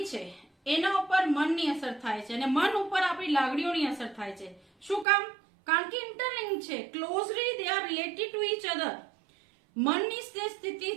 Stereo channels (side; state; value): left; drops out; at 5.1 s